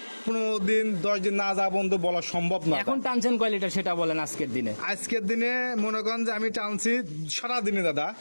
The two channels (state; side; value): inverted; both; correlation -1.00